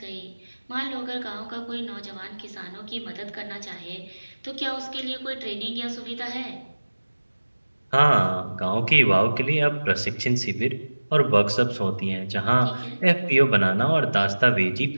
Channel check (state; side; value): inverted; both; correlation -1.00